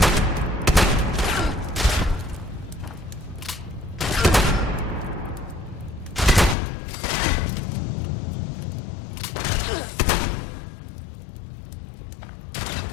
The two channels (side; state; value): right; drops out; at 6.6 s